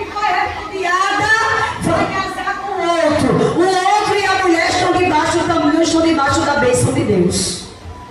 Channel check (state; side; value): identical; both; correlation 1.00